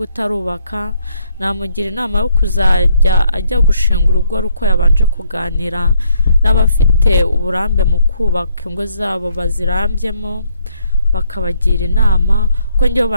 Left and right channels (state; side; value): inverted; both; correlation -0.71